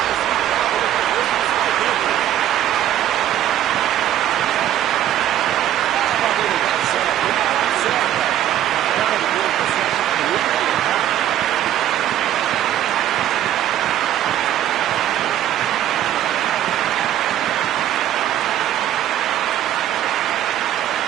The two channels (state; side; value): quieter; left; 11.8 dB